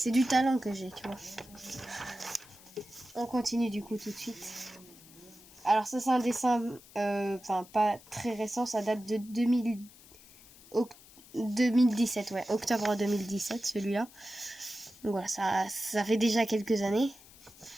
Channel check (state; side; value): noise; left; hiss, 22 dB below the sound